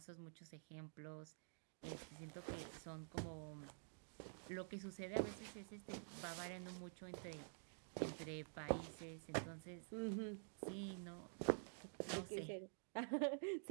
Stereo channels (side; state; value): left; silent; digital silence